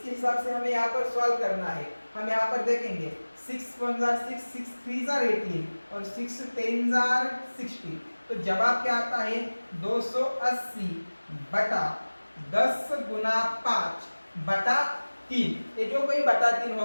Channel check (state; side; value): inverted; both; correlation -1.00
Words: हिसाब से हमें यहाँ पर सॉल्व करना है। हम यहाँ पर देखेंगे 6 1 6 6 3 18 और 6 10 60। तो जवाब क्या आता है? 280 बटा 10 गुना 5/3। ये जो कोई बटा 3